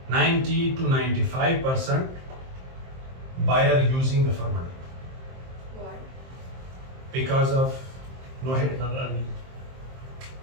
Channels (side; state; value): left; late; 23 ms